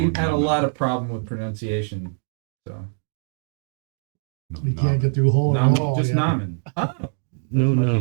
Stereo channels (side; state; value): left; silent; digital silence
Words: had a lot of problem with pronunciation, so We can't get through a hole in the nomin, wall. just yet. nomin. Oh, No much